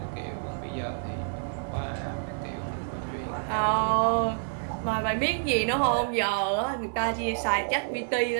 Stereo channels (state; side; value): silent; left; digital silence